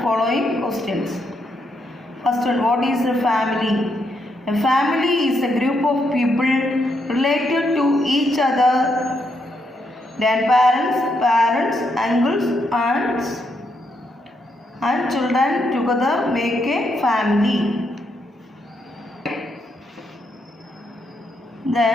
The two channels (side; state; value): both; normal; correlation 0.78